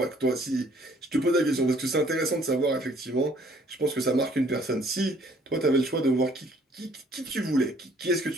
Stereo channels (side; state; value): both; normal; correlation 0.60